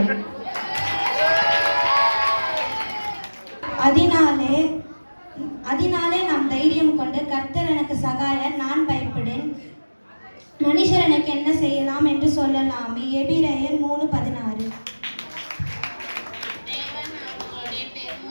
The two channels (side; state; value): both; inverted; correlation -1.00